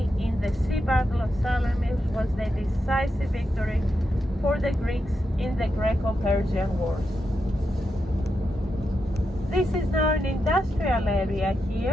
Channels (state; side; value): normal; both; correlation 0.86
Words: in the sea battle of Salamis was the decisive victory for the Greeks in the Greco-Persian Wars. This is now an industrial area